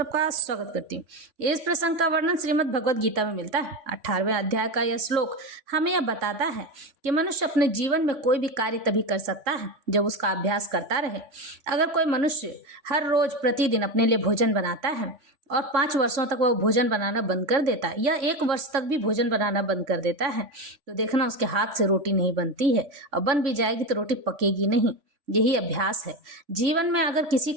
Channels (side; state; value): left; late; 3.5 ms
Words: स्वागत करती हूँ। इस प्रसंग का वर्णन श्रीमद् भगवद गीता में मिलता है। 18वें अध्याय का यह श्लोक हमें यह बताता है कि मनुष्य अपने जीवन में कोई भी कार्य तभी कर सकता है जब उसका अभ्यास करता रहे। अगर कोई मनुष्य हर रोज प्रतिदिन अपने लिए भोजन बनाता है और 5 वर्षों तक वह भोजन बनाना बंद कर देता है या 1 वर्ष तक भी भोजन बनाना बंद कर देता है, तो देखना उसके हाथ से रोटी नहीं बनती है, और बन भी जाएगी तो रोटी पकेगी नहीं। यही अभ्यास है। जीवन में अगर किसी